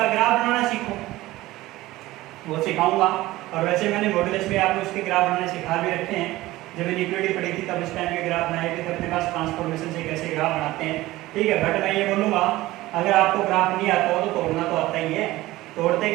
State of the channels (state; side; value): quieter; left; 17.7 dB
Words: ग्राफ बनाना सीखो, वो सिखाऊंगा, और वैसे मैंने मॉडुलस में आपको इसके ग्राफ बनाने सिखा भी रखे हैं। जब इक्विटी पढ़ी थी तब इस टाइम के ग्राफ बनाए थे, अपने पास ट्रांसफॉर्मेशन से कैसे ग्राफ बनाते हैं। ठीक है, बट मैं ये बोलूँगा अगर आपको ग्राफ नहीं आता हो तो तोड़ना तो आता ही है। तोड़ते